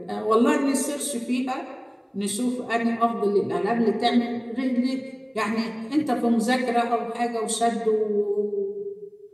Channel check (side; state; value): both; identical; correlation 1.00